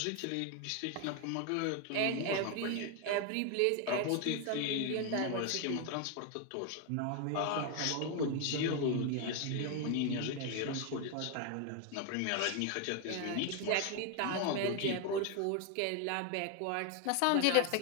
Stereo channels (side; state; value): both; different; correlation 0.01